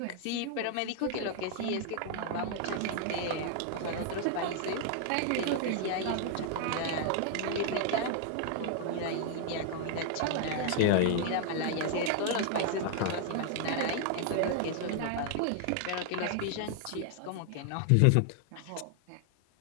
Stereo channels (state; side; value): different; both; correlation 0.00